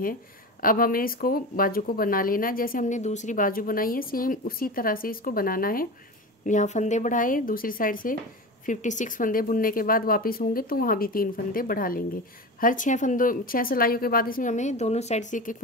अब हमें इसको बाजू को बना लेना, जैसे हमने दूसरी बाजू बनाई है सेम उसी तरह से इसको बनाना है। यहाँ फंदे बढ़ाए, दूसरी साइड से 56 फंदे बुनने के बाद वापस होंगे तो वहाँ भी 3 फंदे बढ़ा लेंगे। हर 6 सिलाइयों के बाद इसमें हमें दोनों साइड से एक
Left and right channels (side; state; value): both; normal; correlation 0.28